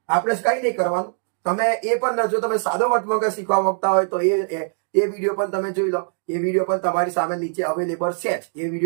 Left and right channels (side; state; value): left; silent; 64 dB below the other